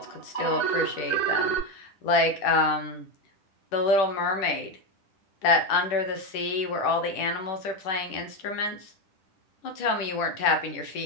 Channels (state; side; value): late; right; 10 ms